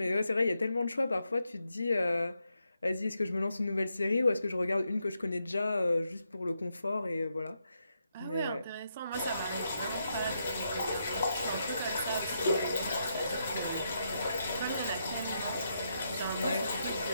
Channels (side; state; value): both; inverted; correlation -0.82